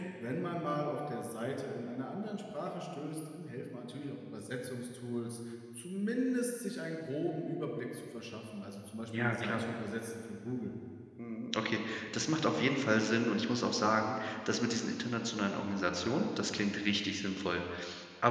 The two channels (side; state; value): both; identical; correlation 1.00